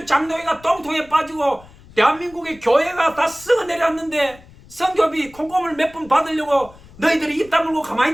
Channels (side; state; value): left; noise; rumble, 23 dB below the sound